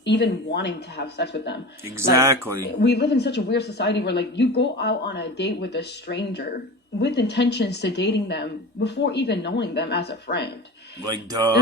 even wanting to have sex with them. Exactly. We live in such a weird society where you go out on a date with a stranger with intentions to dating them before even knowing them as a friend. Like,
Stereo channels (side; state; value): both; normal; correlation 0.32